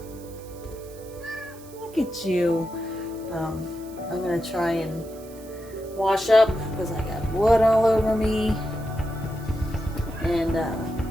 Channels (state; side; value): noise; right; hiss, 22 dB below the sound